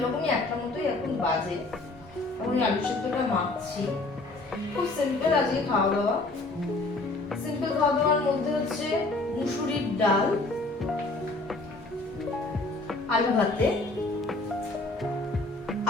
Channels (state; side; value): quieter; right; 3.1 dB